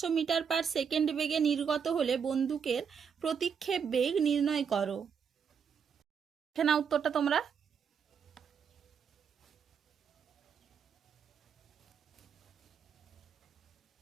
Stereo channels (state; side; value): quieter; left; 6.9 dB